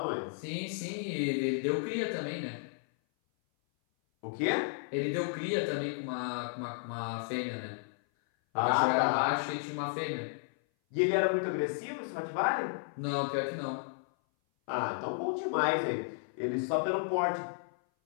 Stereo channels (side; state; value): right; silent; 56 dB below the other